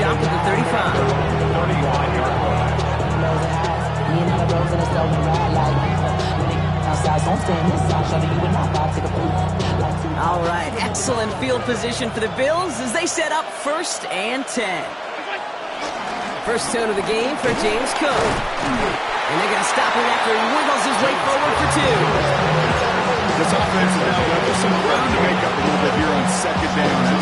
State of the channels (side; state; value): both; identical; correlation 1.00